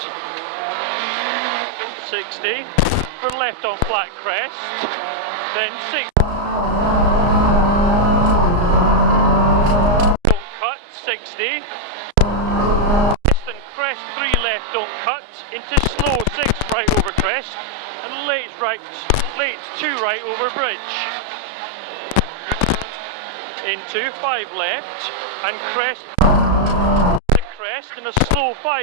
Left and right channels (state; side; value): late; left; 34 ms